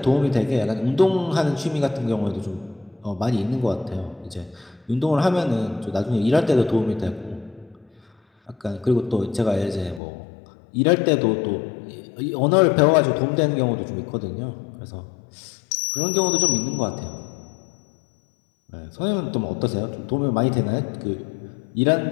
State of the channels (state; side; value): drops out; right; at 10.0 s